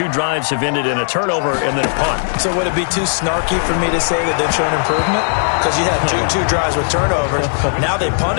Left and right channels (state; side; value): silent; right; 69 dB below the other